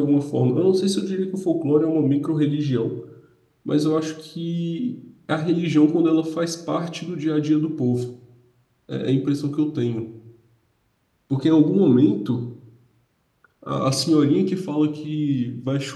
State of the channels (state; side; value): identical; both; correlation 1.00